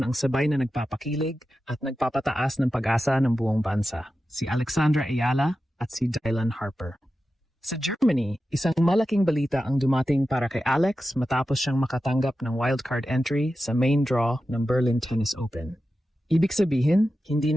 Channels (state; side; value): normal; both; correlation 0.92